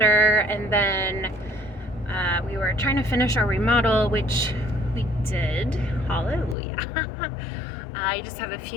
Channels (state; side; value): drops out; right; at 6.6 s